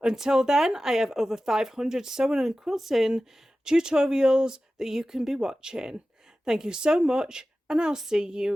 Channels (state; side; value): normal; both; correlation 0.95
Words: Until then, I have over 500 sewing and quilting tutorials that you can be watching. Thank you so much, and I'll see